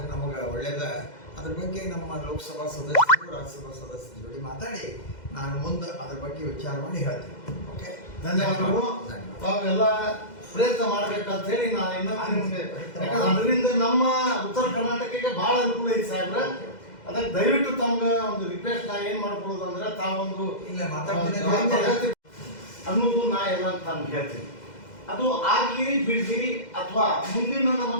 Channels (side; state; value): right; late; 2.0 ms